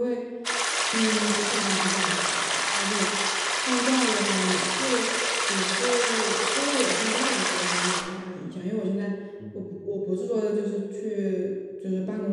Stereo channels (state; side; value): identical; both; correlation 1.00